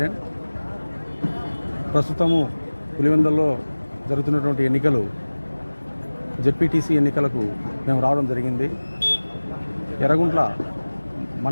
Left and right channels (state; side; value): inverted; both; correlation -1.00